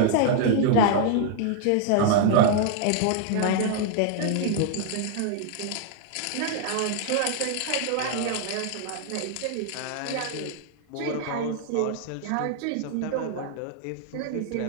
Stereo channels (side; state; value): both; different; correlation 0.00